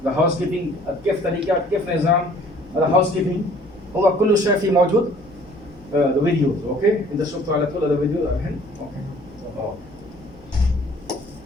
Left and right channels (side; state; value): left; noise; hum, 25 dB below the sound